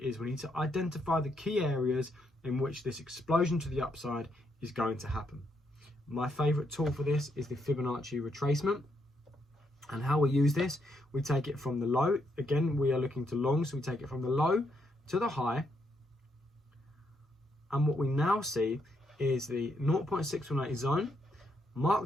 we need to identify the key areas in which this explosion to the upside is going to happen. My favorite tool for this is the Fibonacci Retracement. And how we use this, we take it from the low. Again, we are looking to long, so we take it from the low to the high. And what we now see is the 0.618 zone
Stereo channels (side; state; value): both; normal; correlation 0.77